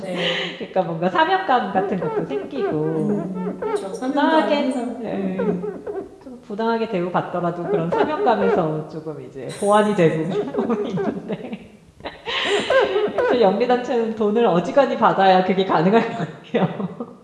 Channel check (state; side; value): identical; both; correlation 1.00